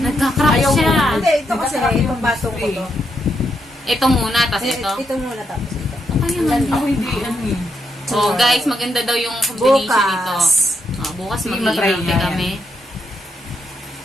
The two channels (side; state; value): both; normal; correlation 0.79